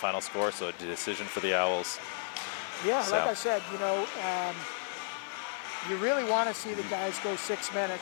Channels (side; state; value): right; silent; digital silence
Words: score, so a decision for the Owls. Yeah, so. Like I said, you know, you really want to see the guys go 6